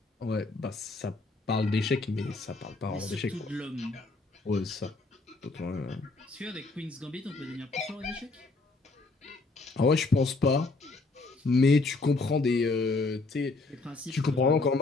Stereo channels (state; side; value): quieter; right; 3.5 dB